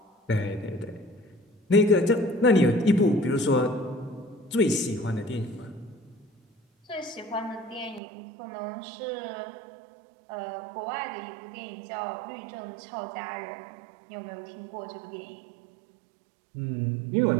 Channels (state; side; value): drops out; left; at 8.0 s